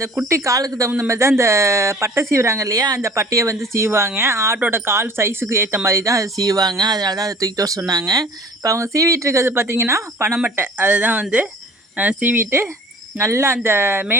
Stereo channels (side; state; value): both; normal; correlation 0.47